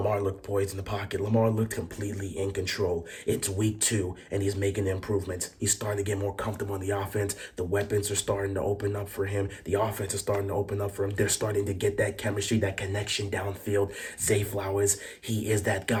looked poised in the pocket. Lamar looked completely in control. It's week 2, and he's making improvements. He's starting to get more comfortable in the offense. The weapons are starting to open up for him. The offense is starting to open up for him. They're starting to get that chemistry, that connection downfield. Zay Flowers, he is that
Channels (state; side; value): identical; both; correlation 1.00